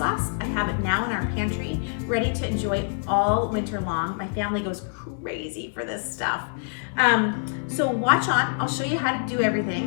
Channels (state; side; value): silent; right; digital silence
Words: I have it now in our pantry, ready to enjoy all winter long. My family goes crazy for this stuff. So watch on, I'll show you how to do